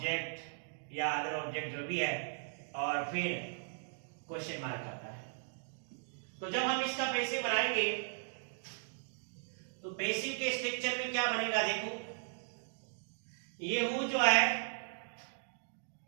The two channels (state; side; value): silent; left; digital silence